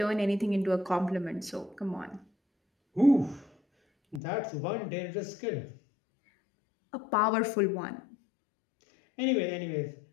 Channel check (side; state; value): right; drops out; at 4.2 s